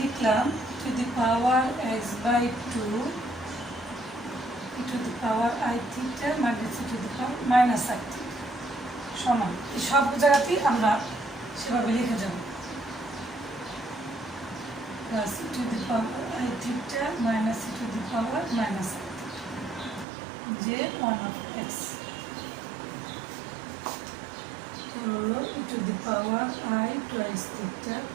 লিখলাম to the power x/2 e to the power i theta minus e to the power minus i theta সমান, এই সব জায়গাতেই আমরা সেভাবে লিখে যাব, plus e to the power i theta minus e to the power minus i theta যে 1 of x হলো e to the power i twice theta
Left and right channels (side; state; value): left; drops out; at 20.1 s